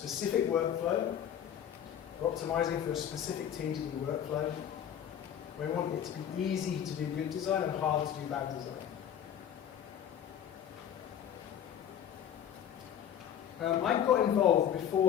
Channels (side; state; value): right; quieter; 9.6 dB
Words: workflow. We're optimizing for a specific TDD workflow. We want it to be easy to do good design and hard to do bad design. I got involved